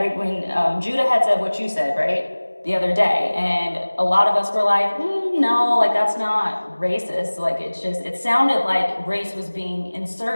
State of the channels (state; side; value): inverted; both; correlation -1.00